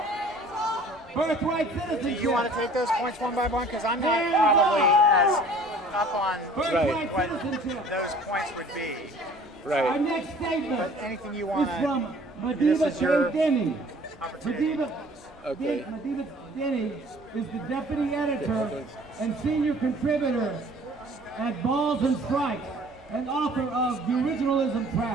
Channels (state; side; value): normal; both; correlation 0.51